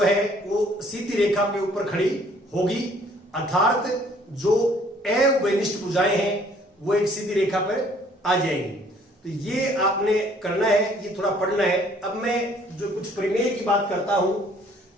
है वो सीधी रेखा के ऊपर खड़ी होगी, अर्थात जो उभयनिष्ठ भुजाएं हैं वो एक सीधी रेखा पर आ जाएंगी। तो ये आपने करना है, ये थोड़ा पढ़ना है। अब मैं जो कुछ प्रमेय की बात करता हूं,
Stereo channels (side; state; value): both; normal; correlation 0.59